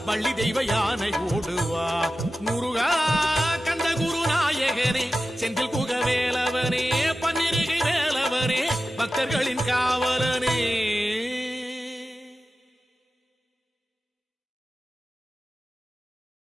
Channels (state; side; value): normal; both; correlation 0.94